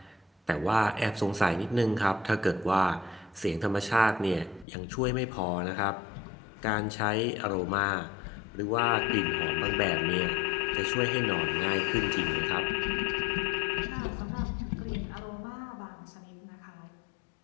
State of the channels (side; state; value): right; drops out; at 4.7 s